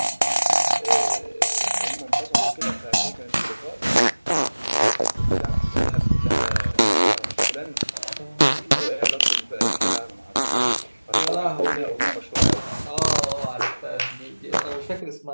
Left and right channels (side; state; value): both; inverted; correlation -1.00